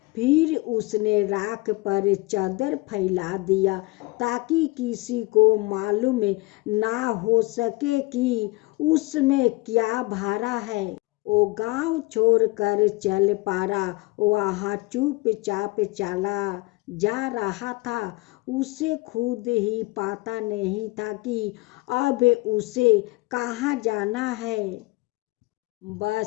फिर उसने राख पर चादर फैला दिया ताकि किसी को मालूम ना हो सके कि उसमें क्या भरा है। वो गांव छोड़कर चल पड़ा। वहाँ चुपचाप चला जा रहा था। उसे खुद ही पता नहीं था कि अब उसे कहाँ जाना है।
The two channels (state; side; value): quieter; right; 22.7 dB